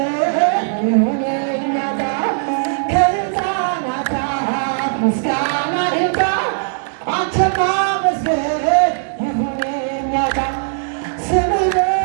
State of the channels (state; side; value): silent; left; digital silence